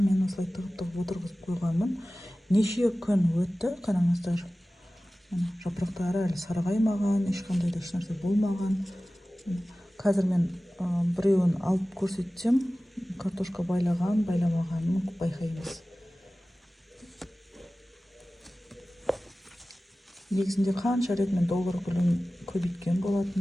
осылай тығып отырғызып қойғанмын. Неше күн өтті, қараңыздар. Жапырақтары әлі сарғаймаған, ешқандай да ешнәрсе болмаған. Қазір мен біреуін алып көрсетсем, картошка байлаған, байламағанын байқаймыз. Негізінде қанша рет мен доллар гүлін көбейткен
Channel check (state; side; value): normal; both; correlation 0.97